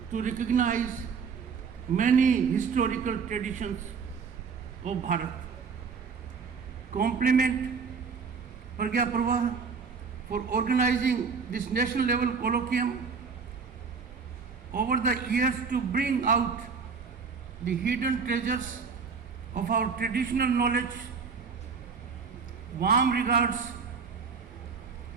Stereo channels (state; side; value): quieter; left; 5.5 dB